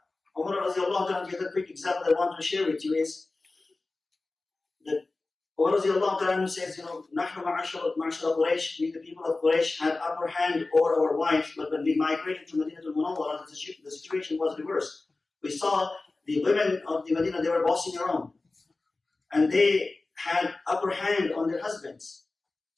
Umar radiallahu ta'ala, the other quick example I want to share with you is that Umar radiallahu ta'ala says, Nahnu ma'ashara Quraysh, we the people of Quraysh had upper hand over our wives, but when we migrated to Madinah al-Munawwara, the situation was reversed. We saw the women of the Medina, they were bossing around. And they had upper hand on their husbands.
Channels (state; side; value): quieter; right; 3.4 dB